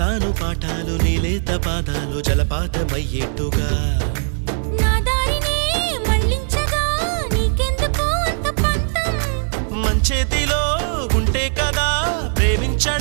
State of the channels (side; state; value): left; silent; 66 dB below the other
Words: చెబుతాను పాఠాలు నీలేత పాదాలు జలపాతమయ్యేట్టుగా నా దారినే మళ్ళించగా నీకెందుకు అంత పంతం మంచేతిలో ఉంటే కదా